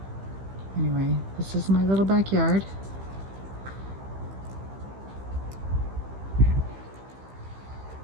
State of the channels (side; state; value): left; late; 15 ms